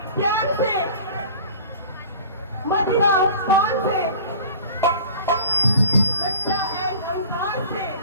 प्यार से मदिरा पान से लज्जा एंड अहंकार से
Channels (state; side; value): inverted; both; correlation -0.44